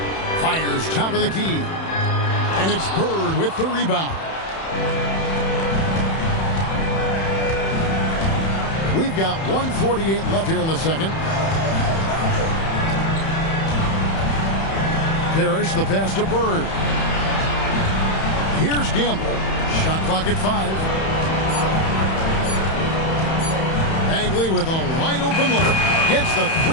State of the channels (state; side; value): late; right; 31 ms